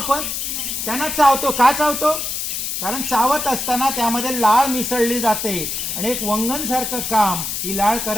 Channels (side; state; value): left; noise; hiss, 3 dB below the sound